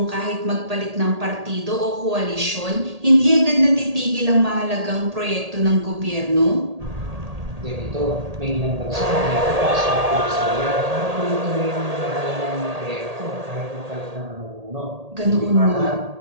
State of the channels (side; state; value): left; late; 1.8 ms